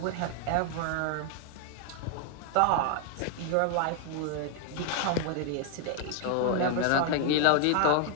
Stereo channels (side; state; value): both; different; correlation 0.00